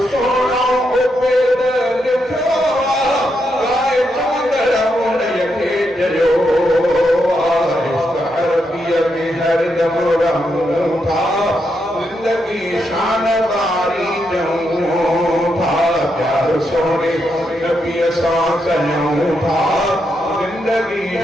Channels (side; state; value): both; normal; correlation 0.82